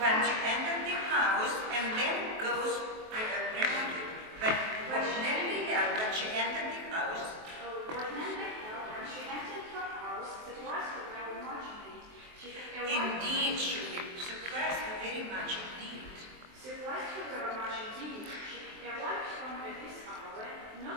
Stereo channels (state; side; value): late; left; 23 ms